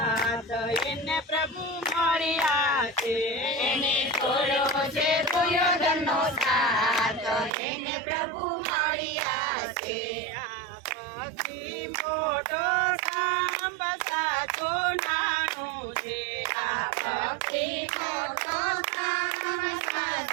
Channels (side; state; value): left; drops out; at 7.5 s